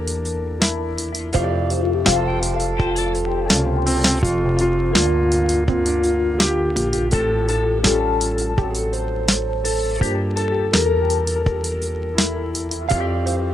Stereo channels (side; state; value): both; normal; correlation 0.87